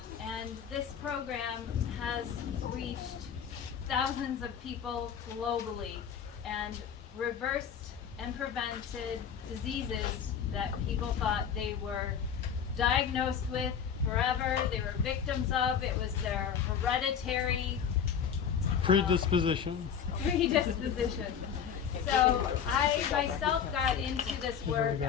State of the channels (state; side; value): quieter; right; 7.8 dB